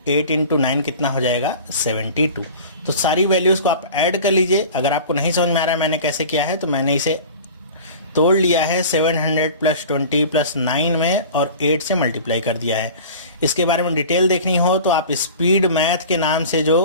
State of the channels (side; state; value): both; inverted; correlation -0.39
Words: 8 इंटू 9 कितना हो जाएगा 72। तो सारी वैल्यूज को आप ऐड कर लीजिए। अगर आपको नहीं समझ में आ रहा है मैंने कैसे किया है, तो मैंने इसे तोड़ लिया है 700 प्लस 20 प्लस 9 में और 8 से मल्टीप्लाई कर दिया है। इसके बारे में डिटेल देखनी हो तो आप स्पीड मैथ के नाम से